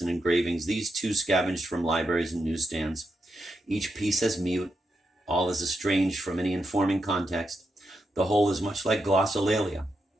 and engravings. These too scavenged from libraries and newsstands. Each piece as mute, all as estranged from any informing context. The whole is much like glossolalia,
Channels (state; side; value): normal; both; correlation 0.85